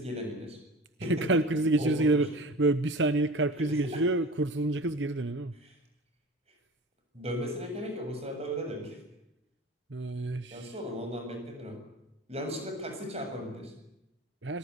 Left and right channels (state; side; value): normal; both; correlation 0.36